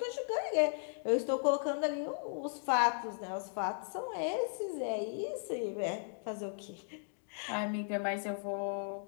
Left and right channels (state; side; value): silent; right; digital silence